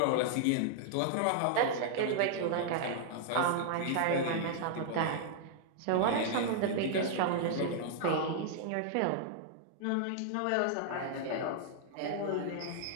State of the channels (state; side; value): different; both; correlation -0.01